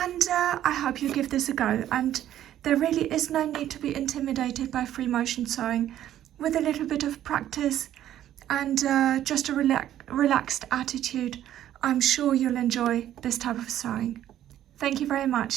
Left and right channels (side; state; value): left; quieter; 11.9 dB